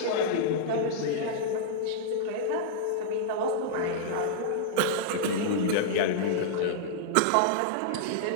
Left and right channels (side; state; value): both; different; correlation -0.02